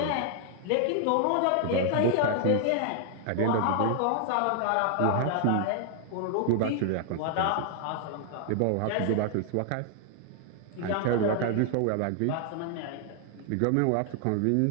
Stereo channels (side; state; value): both; different; correlation 0.00